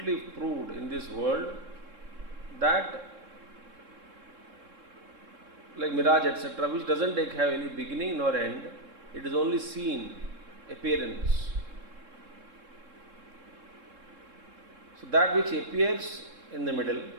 proved in this world that, like mirage, etc., which doesn't have any beginning nor end, It is only seen, appearance. So that which appears in the middle,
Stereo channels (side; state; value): left; late; 3.7 ms